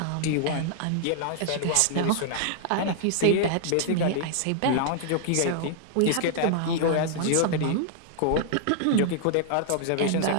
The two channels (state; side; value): different; both; correlation -0.01